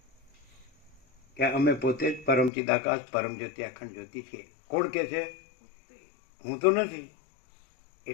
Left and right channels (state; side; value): drops out; right; at 2.5 s